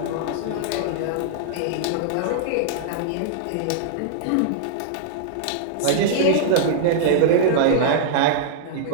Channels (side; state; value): both; different; correlation -0.02